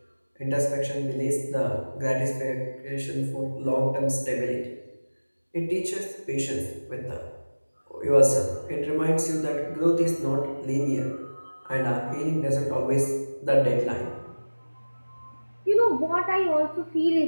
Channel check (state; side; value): inverted; both; correlation -1.00